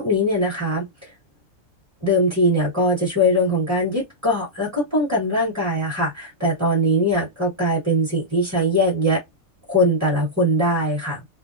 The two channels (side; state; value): both; normal; correlation -0.11